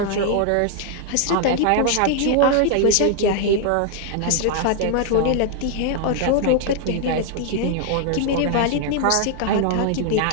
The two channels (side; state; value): both; different; correlation 0.00